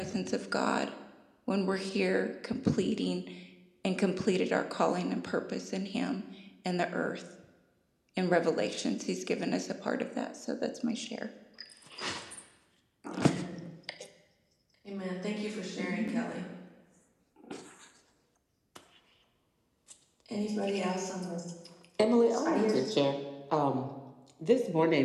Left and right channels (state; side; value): identical; both; correlation 1.00